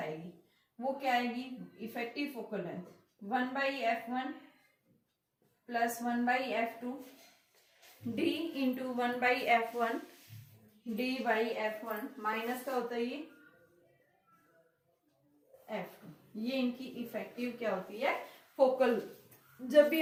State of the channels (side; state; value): both; identical; correlation 1.00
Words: वो क्या आएगी, effective focal length 1/f1 plus 1/f2 d into 1/f1 d/f1 minus का होता है ये f2। ये इनकी इफेक्टिव क्या होती है, फोकल। जब भी